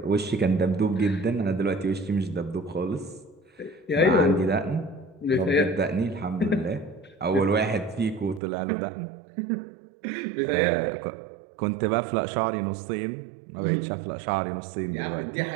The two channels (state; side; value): drops out; left; at 8.4 s